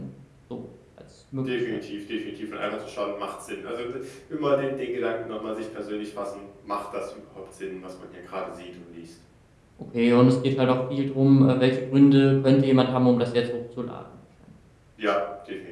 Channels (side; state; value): both; identical; correlation 1.00